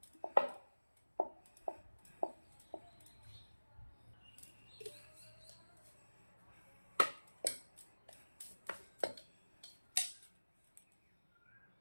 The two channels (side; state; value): both; inverted; correlation -1.00